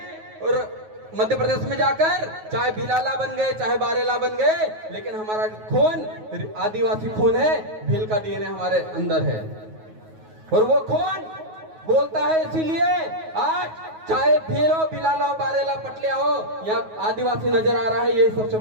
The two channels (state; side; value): late; left; 9.4 ms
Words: और मध्य प्रदेश में जाकर चाहे भीलाला बन गए, चाहे बारेला बन गए, लेकिन हमारा खून आदिवासी खून है, भील का डीएनए हमारे अंदर है। और वो खून बोलता है, इसीलिए आज चाहे भील हो, बिलाला हो, बारेला, पटलिया हो, यहाँ आदिवासी नजर आ रहा है। यही सबसे